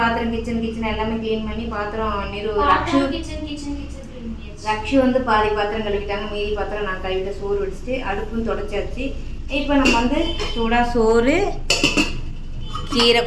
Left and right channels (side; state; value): both; identical; correlation 1.00